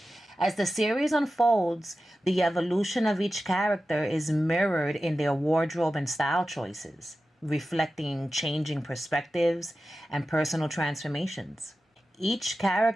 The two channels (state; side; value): normal; both; correlation 0.93